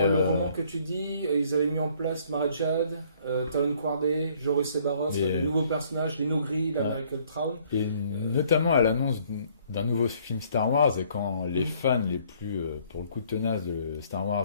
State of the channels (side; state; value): both; inverted; correlation -0.62